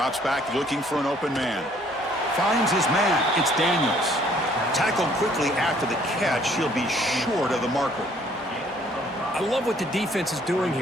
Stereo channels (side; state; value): both; normal; correlation 0.61